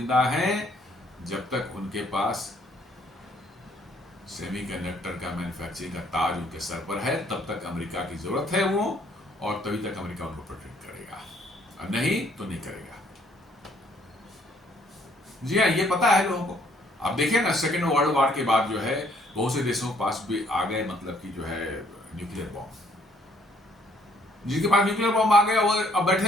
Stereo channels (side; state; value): both; normal; correlation 0.64